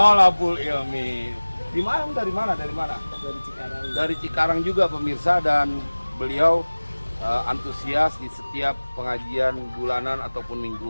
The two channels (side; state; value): both; inverted; correlation -1.00